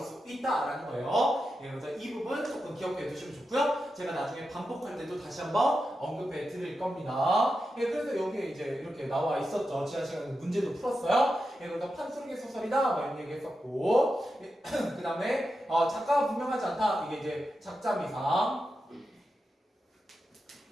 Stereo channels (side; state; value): both; normal; correlation 0.89